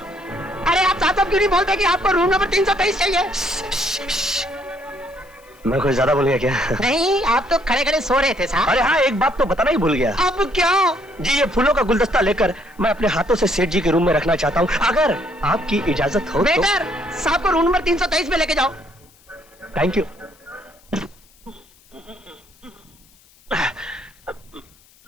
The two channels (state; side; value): noise; left; hiss, 30 dB below the sound